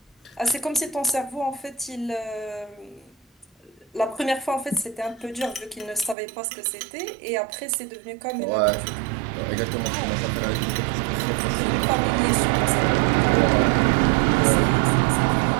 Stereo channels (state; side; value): drops out; left; at 6.2 s